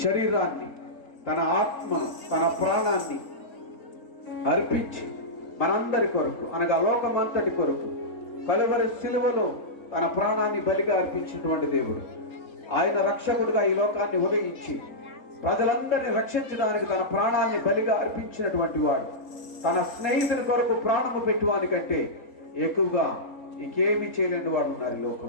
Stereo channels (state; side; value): late; right; 3.7 ms